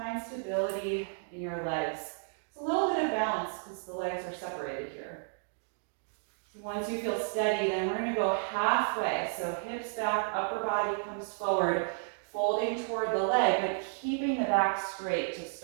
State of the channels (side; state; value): left; silent; digital silence